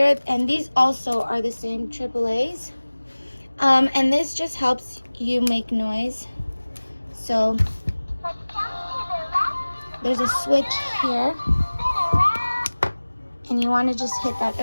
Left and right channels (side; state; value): both; inverted; correlation -1.00